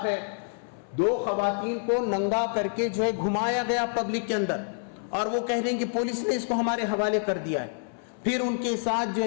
ہے، 2 خواتین کو ننگا کر کے جو ہے گھمایا گیا پبلک کے اندر، اور وہ کہہ رہے ہیں کہ پولیس نے اس کو ہمارے حوالے کر دیا ہے۔ پھر ان کے ساتھ جو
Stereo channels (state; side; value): silent; right; 60 dB below the other